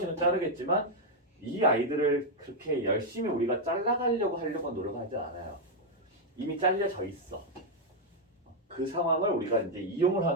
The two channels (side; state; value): both; normal; correlation 0.00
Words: 자르겠지만 이 아이들을 그렇게 열심히 우리가 잘라가려고 하려고 노력하지 않아요. 이미 잘려져 있어. 그 상황을 우리가 이제 이용을